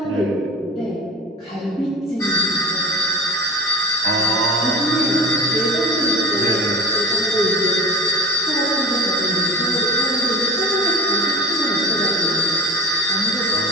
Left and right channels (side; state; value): both; normal; correlation 0.34